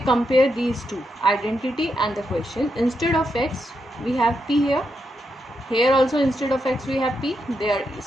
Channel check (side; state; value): both; normal; correlation 0.83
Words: these two, identity and the question, instead of x, we have P here. Here also instead of x, we have P. They are